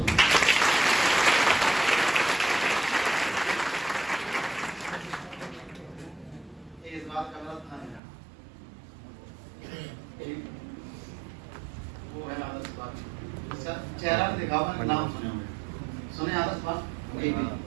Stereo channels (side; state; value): left; drops out; at 8.0 s